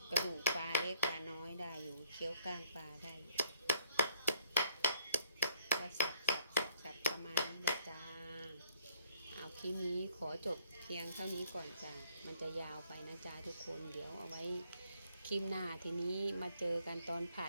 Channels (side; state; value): both; inverted; correlation -0.67